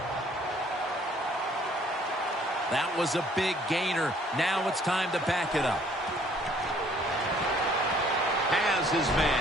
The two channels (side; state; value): both; normal; correlation 0.60